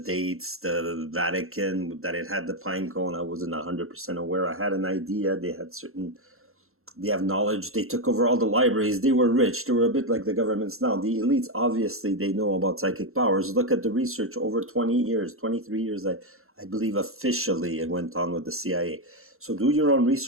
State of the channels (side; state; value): left; late; 0.62 ms